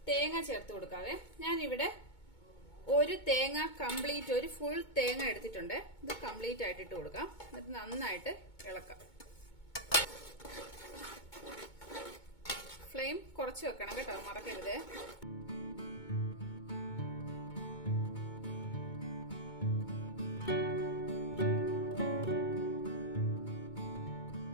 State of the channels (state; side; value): late; right; 2.2 ms